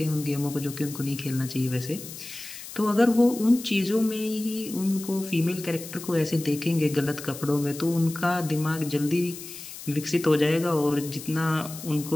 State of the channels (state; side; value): noise; left; hiss, 13 dB below the sound